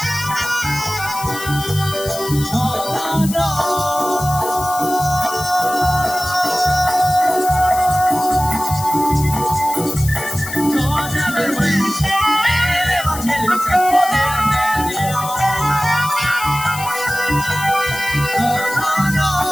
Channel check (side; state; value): left; noise; hiss, 10 dB below the sound